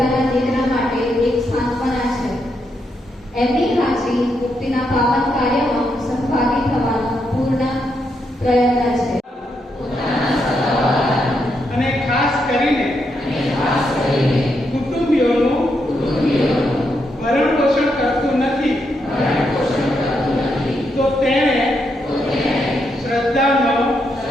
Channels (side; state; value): both; normal; correlation 0.80